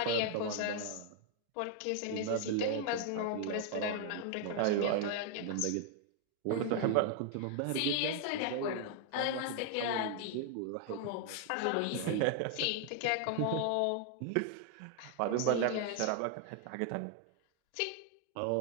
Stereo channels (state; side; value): different; both; correlation 0.00